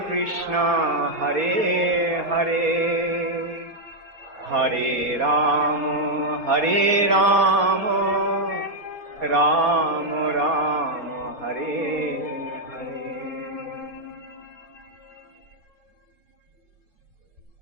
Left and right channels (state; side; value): late; left; 4.2 ms